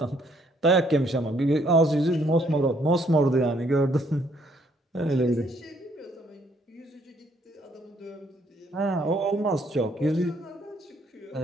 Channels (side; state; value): both; normal; correlation 0.67